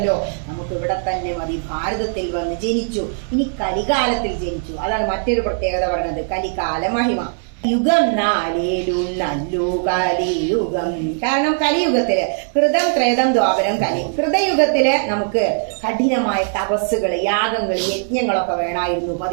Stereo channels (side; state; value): left; silent; digital silence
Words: നമുക്ക് ഇവിടെ തന്നെ മതി. ഭാരതത്തിൽ വന്ന് ജനിച്ചു. ഇനി കലികാലത്തിൽ ജനിച്ചു. അതാണ് മറ്റൊരു പ്രത്യേകത പറയുന്നത്, കലികാല മഹിമ. യുഗം നാലേലും നല്ലു കലിയുഗം. കാരണം കലിയുഗത്തില് കൃതം ത്രേതം ദ്വാപരം കലി. കൃതയുഗത്തില് നമുക്ക് കഠിനമായ തപസ്സുകൾ, യാഗങ്ങൾ, യജ്ഞങ്ങളൊക്കെ വേണമായിരുന്നു.